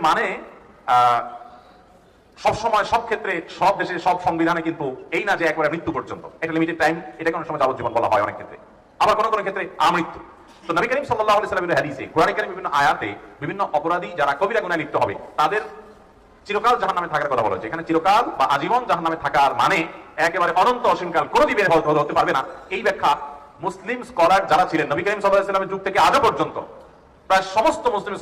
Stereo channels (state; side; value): identical; both; correlation 1.00